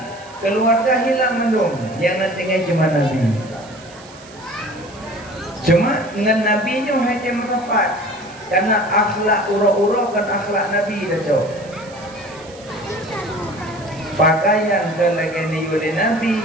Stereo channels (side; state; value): right; noise; hiss, 22 dB below the sound